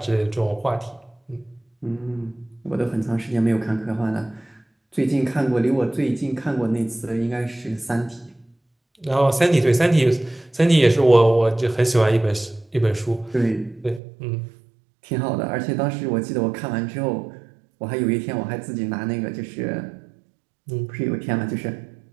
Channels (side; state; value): left; drops out; at 14.0 s